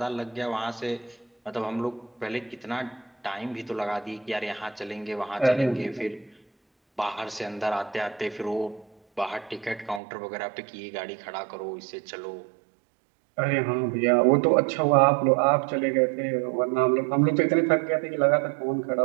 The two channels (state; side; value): drops out; left; at 10.0 s